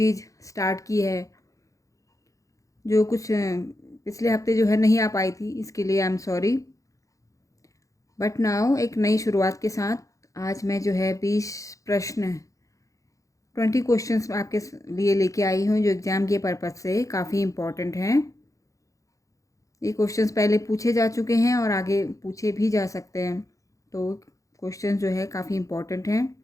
स्टार्ट की है, जो कुछ पिछले हफ्ते जो है नहीं आ पाई थी। इसके लिए I am sorry, but now एक नई शुरुआत के साथ आज मैं जो है 20 प्रश्न 20 क्वेश्चंस आपके लिए लेके आई हूँ, जो एग्ज़ाम के पर्पज़ से काफ़ी इम्पॉर्टेंट हैं। ये क्वेश्चंस पहले पूछे जा चुके हैं और आगे पूछे भी जा सकते हैं, तो क्वेश्चन जो है काफ़ी इम्पॉर्टेंट हैं।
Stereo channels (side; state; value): right; late; 0.16 ms